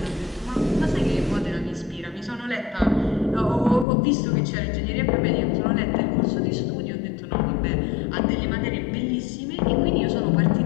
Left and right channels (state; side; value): drops out; right; at 3.9 s